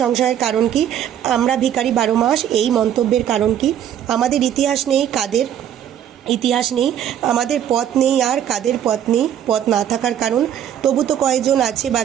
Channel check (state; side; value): quieter; left; 10.1 dB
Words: কারণ কি? আমরা ভিখারি 12 মাস, এই মন্তব্যের কারণ কি? আমাদের ইতিহাস নেই, কাদের ইতিহাস নেই? আমাদের পথ নেই, আর কাদের পথ নেই? পথ না থাকার কারণ? তবু তো কয়েকজন আছে